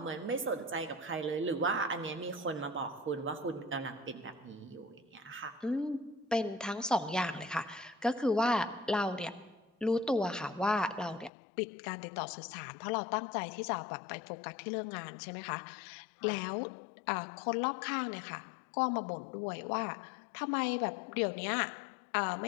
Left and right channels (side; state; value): right; drops out; at 11.3 s